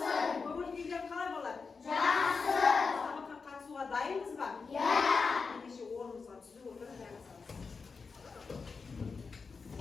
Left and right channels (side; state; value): right; quieter; 4.9 dB